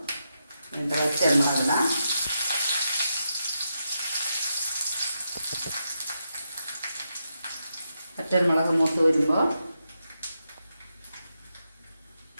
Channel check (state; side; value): inverted; both; correlation -0.85